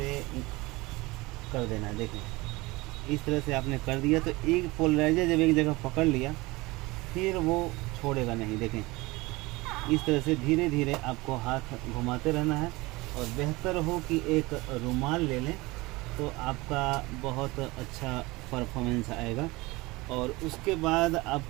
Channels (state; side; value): quieter; left; 22.2 dB